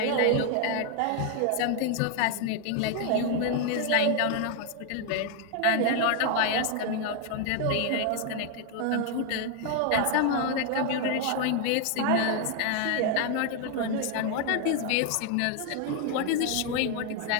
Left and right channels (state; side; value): different; both; correlation 0.00